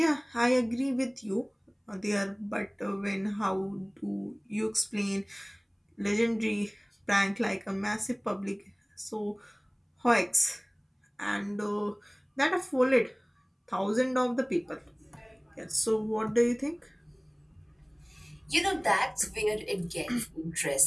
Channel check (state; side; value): identical; both; correlation 1.00